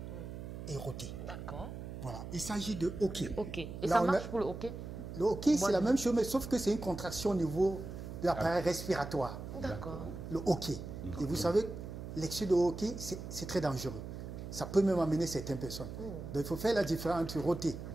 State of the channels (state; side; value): noise; right; hum, 9 dB below the sound